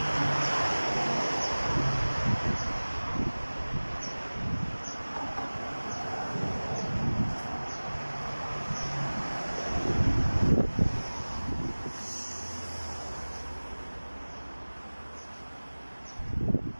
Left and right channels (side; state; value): both; inverted; correlation -1.00